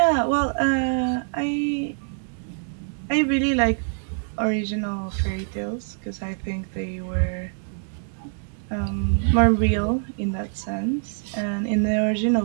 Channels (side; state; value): left; silent; 58 dB below the other